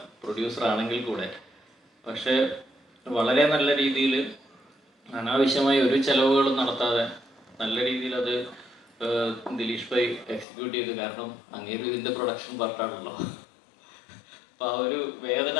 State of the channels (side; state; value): right; drops out; at 10.5 s